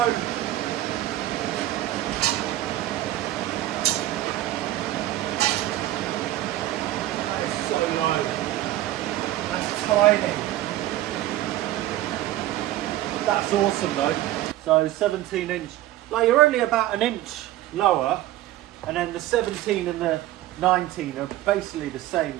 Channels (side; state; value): left; quieter; 14.7 dB